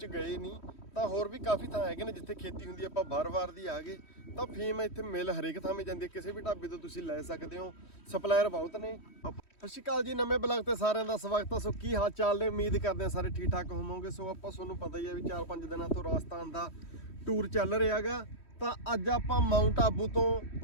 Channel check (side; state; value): right; late; 3.1 ms